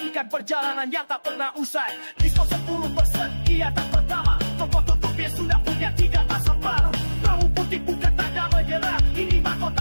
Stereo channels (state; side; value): inverted; both; correlation -1.00